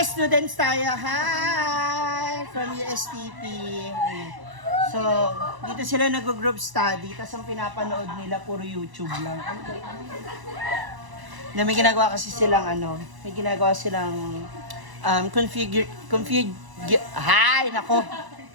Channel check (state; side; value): late; left; 1.0 ms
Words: students tayo. Hi! From USTP. So, dito sila nag-group study. Tapos ang pinapanood nila, puro YouTube lang. Na may ginagawa kasi silang may ginagawa silang hi! Nako!